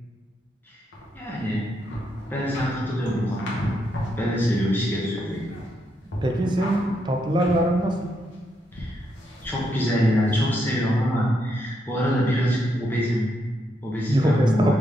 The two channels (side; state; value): both; normal; correlation 0.79